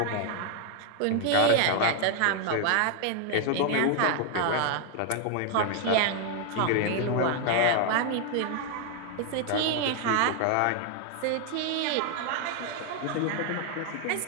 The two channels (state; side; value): different; both; correlation 0.01